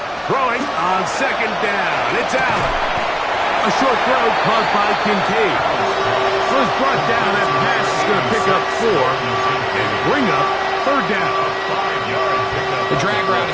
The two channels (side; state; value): both; identical; correlation 1.00